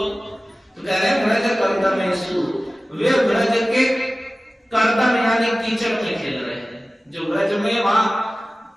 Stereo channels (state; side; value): normal; both; correlation 0.97